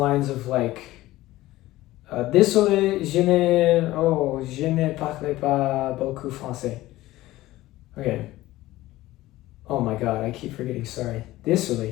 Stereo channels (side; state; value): right; quieter; 16.9 dB